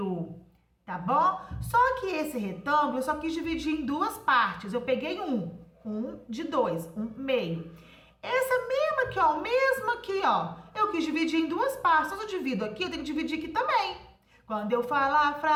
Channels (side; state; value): both; identical; correlation 1.00